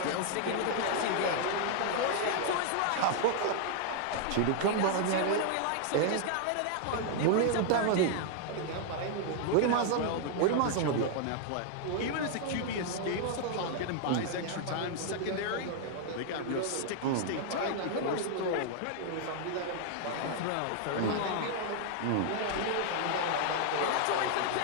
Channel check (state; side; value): different; both; correlation 0.00